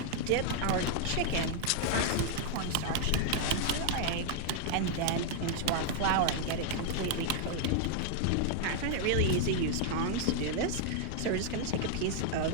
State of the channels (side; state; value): both; different; correlation 0.00